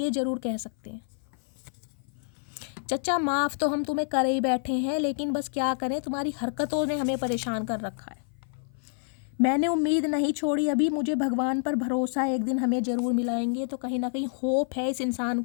ज़रूर कह सकते हैं, चचा माफ़ तो हम तुम्हें करे ही बैठे हैं, लेकिन बस क्या करें, तुम्हारी हरकतों ने हमें परेशान कर रखा है। मैंने उम्मीद नहीं छोड़ी अभी, मुझे भगवान पर भरोसा है, एक दिन हमें ज़रूर मिलाएंगे। तो कहीं ना कहीं होप है इस इंसान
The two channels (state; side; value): silent; right; 55 dB below the other